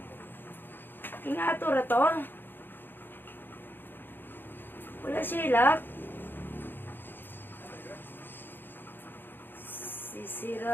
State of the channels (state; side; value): late; right; 0.097 ms